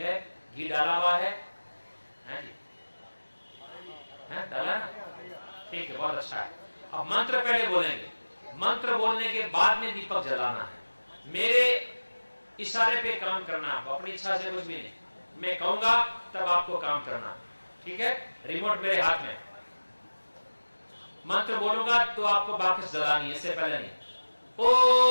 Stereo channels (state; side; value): inverted; both; correlation -1.00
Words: घी डाला हुआ है जी, डाला ना, ठीक है, बहुत अच्छा है। अब मंत्र पहले बोलेंगे, मंत्र बोलने के बाद में दीपक जलाना है। मेरे इशारे पे काम करना, आपको अपनी इच्छा से कुछ भी नहीं, मैं कहूंगा तब आपको काम करना, ठीक है। रिमोट मेरे हाथ में, मंत्र बोलूंगा तो आपको वापस जलानी है, इससे पहले नहीं।